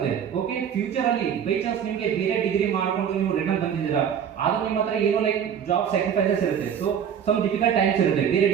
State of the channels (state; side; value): quieter; left; 8.3 dB